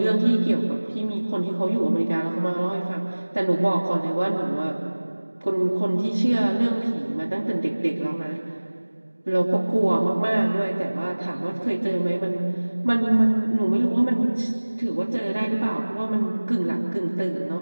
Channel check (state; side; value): inverted; both; correlation -1.00